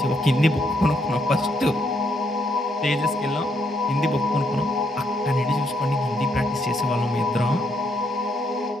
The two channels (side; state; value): both; normal; correlation 0.74